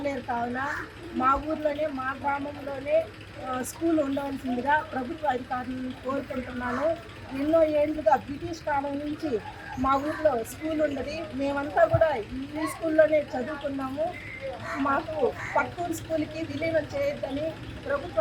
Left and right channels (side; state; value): both; identical; correlation 1.00